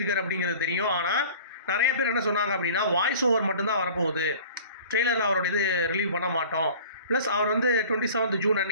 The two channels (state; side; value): inverted; both; correlation -0.44